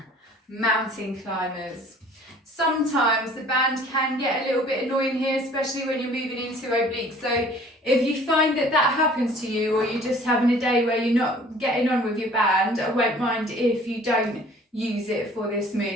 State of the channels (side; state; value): both; normal; correlation 0.52